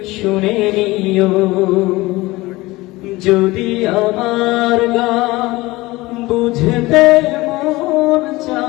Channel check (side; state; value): right; quieter; 20.3 dB